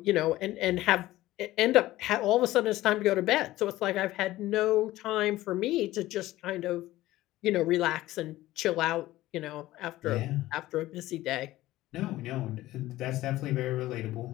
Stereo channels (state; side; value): quieter; right; 16.3 dB